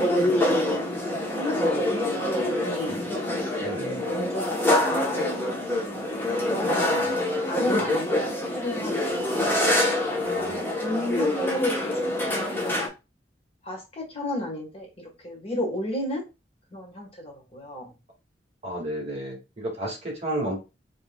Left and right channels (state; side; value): normal; both; correlation 0.51